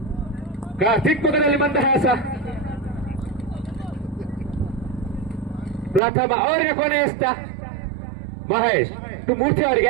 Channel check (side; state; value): left; drops out; at 6.0 s